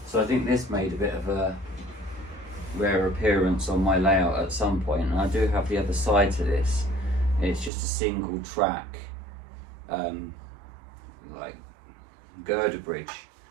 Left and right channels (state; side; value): drops out; left; at 7.7 s